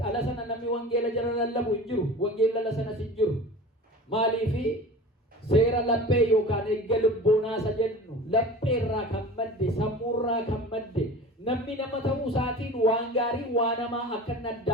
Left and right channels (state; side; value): normal; both; correlation 0.37